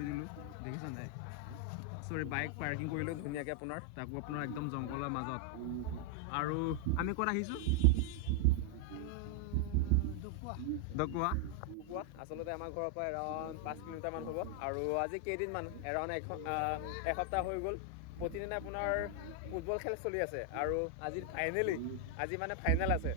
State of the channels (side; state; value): both; different; correlation 0.00